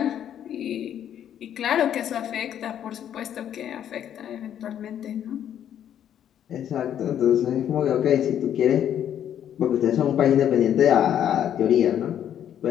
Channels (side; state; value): right; quieter; 10.0 dB